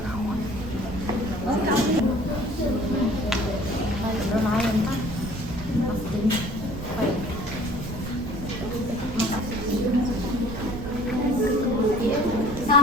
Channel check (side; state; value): right; noise; rumble, 9 dB below the sound